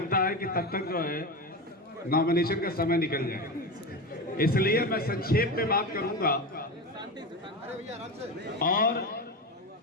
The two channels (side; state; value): both; normal; correlation 0.21